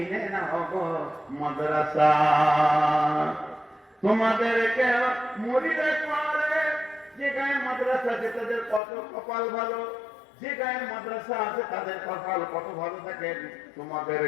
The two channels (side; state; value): right; drops out; at 8.8 s